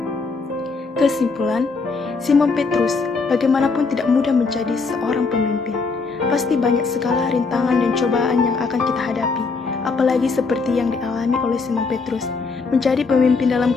Kesimpulan, Simon Petrus bagaimanapun tidak mudah menjadi seorang pemimpin. Pasti banyak segala rintangan dan cobaan yang akan kita hadapi, apalagi seperti yang dialami oleh Simon Petrus. Menjadi pemimpin dalam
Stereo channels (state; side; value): quieter; right; 4.4 dB